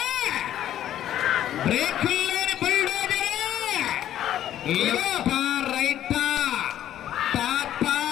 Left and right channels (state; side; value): quieter; right; 11.6 dB